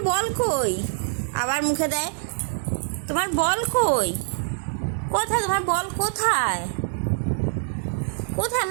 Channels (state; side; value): silent; left; 58 dB below the other